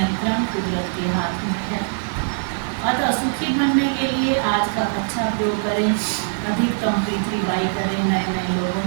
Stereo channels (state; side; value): silent; left; 64 dB below the other